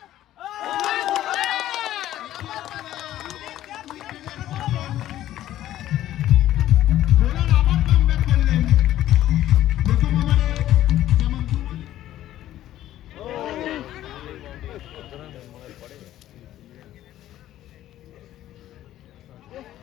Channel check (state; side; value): quieter; right; 13.2 dB